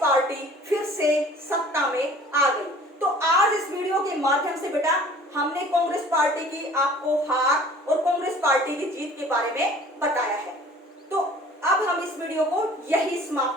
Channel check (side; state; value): both; normal; correlation 0.49